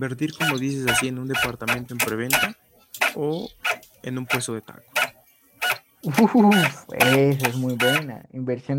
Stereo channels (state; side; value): identical; both; correlation 1.00